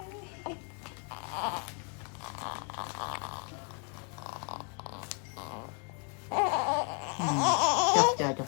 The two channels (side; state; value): right; quieter; 37.6 dB